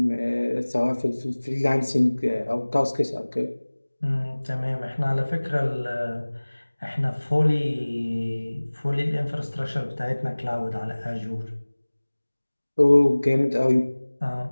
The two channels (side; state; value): both; inverted; correlation -1.00